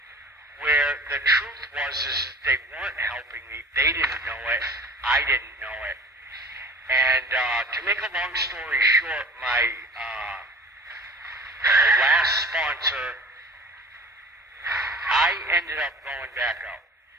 where the truth was is that they weren't helping me. They didn't know it. I didn't know it. And to make a long story short, my last sponsor, I ended up going back out,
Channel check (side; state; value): both; normal; correlation 0.42